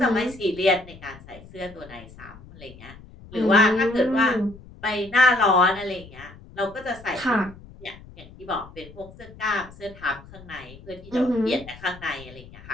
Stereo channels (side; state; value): left; noise; rumble, 19 dB below the sound